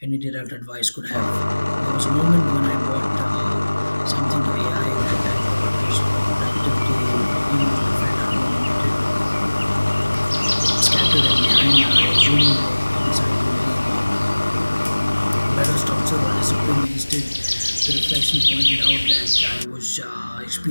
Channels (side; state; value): both; inverted; correlation -1.00